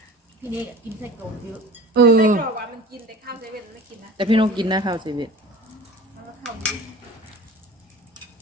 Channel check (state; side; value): normal; both; correlation 0.40